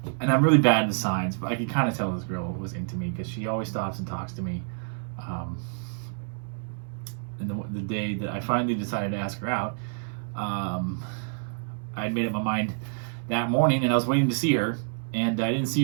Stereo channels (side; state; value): left; silent; 59 dB below the other